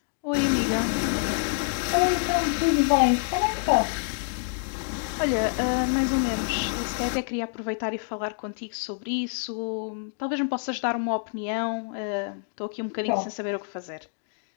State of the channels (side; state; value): right; silent; digital silence